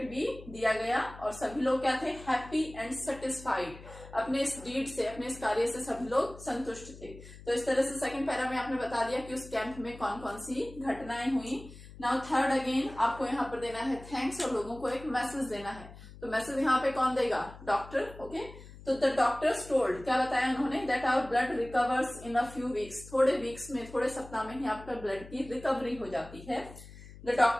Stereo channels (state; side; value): noise; left; hum, 17 dB below the sound